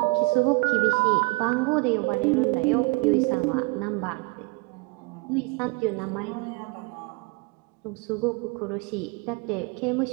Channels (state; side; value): quieter; left; 28.0 dB